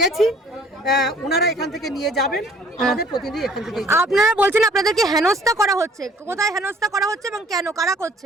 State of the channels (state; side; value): normal; both; correlation 0.55